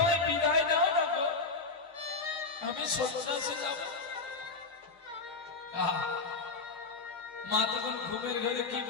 বিদায় দাও না গো, আমি সন্ন্যাসে যাব। মা তখন ঘুমের ঘরে কি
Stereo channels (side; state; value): right; quieter; 4.1 dB